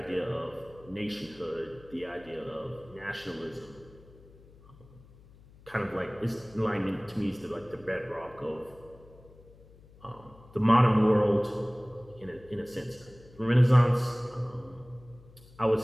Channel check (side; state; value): left; noise; hum, 24 dB below the sound